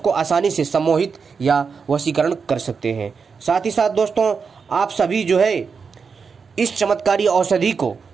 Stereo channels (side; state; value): left; quieter; 5.6 dB